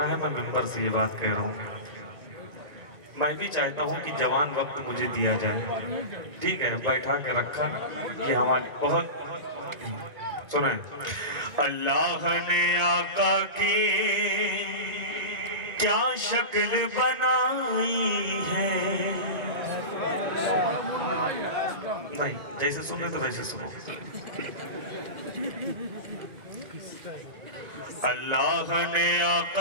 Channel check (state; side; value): late; left; 1.9 ms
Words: है, मैं मिंबर से ये बात कह रहा हूँ। मैं भी चाहता हूँ कि जवान वक्त मुझे दिया जाए, ठीक है, बैठा के रखा, ये हमारी बहुत सुने। अल्लाह ने आका की क्या शक्ल बनाई है, नहीं जैसे सुन रहे तो वैसे सुनो। अल्लाह ने